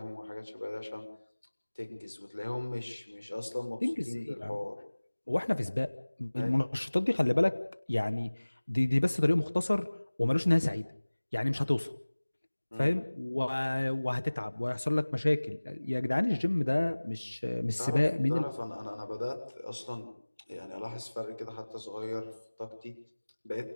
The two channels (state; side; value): inverted; both; correlation -1.00